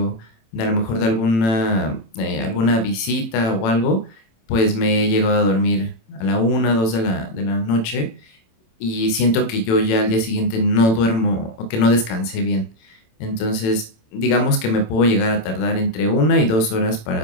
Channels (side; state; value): right; late; 27 ms